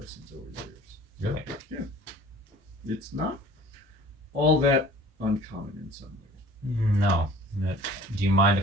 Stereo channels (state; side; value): normal; both; correlation 0.48